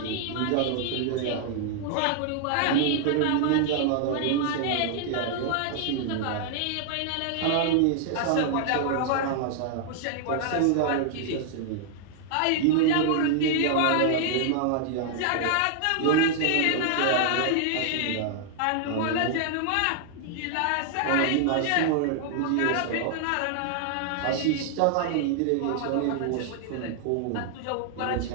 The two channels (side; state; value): both; different; correlation 0.00